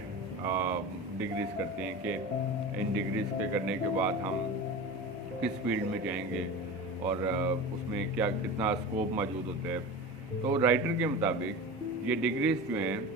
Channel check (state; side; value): normal; both; correlation 0.30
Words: ڈگریز کرتے ہیں کہ ان ڈگریز کے کرنے کے بعد ہم کس فیلڈ میں جائیں گے اور اس میں کیا کتنا اسکوپ موجود ہوتا ہے. تو رائٹر کے مطابق یہ ڈگریز جو ہیں